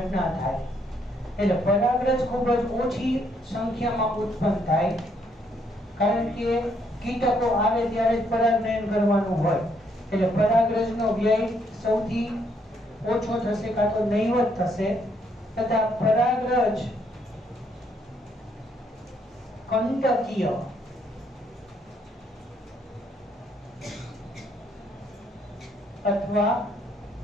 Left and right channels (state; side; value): normal; both; correlation 0.71